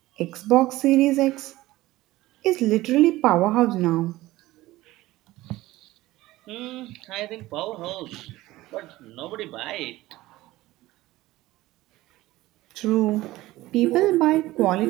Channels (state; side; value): quieter; left; 17.5 dB